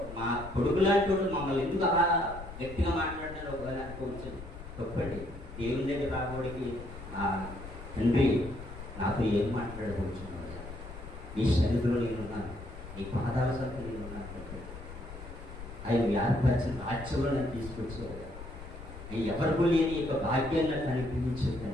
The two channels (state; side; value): noise; left; rumble, 12 dB below the sound